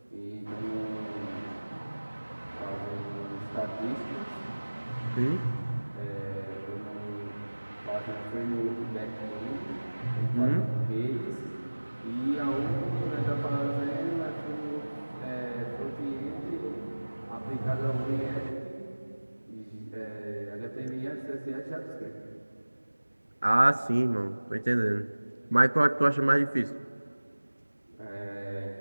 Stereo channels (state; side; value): inverted; both; correlation -1.00